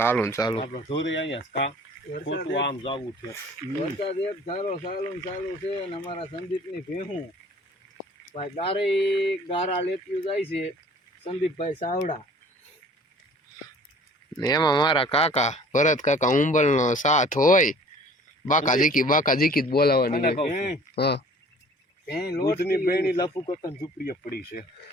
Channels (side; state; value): both; normal; correlation 0.50